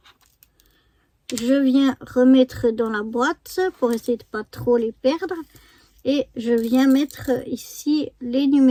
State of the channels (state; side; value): identical; both; correlation 1.00